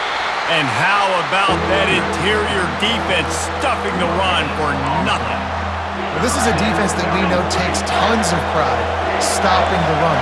And how about that interior defense stuffing the run for nothing? Well, this is a defense that we know takes tons of pride stopping the run.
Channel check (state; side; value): identical; both; correlation 1.00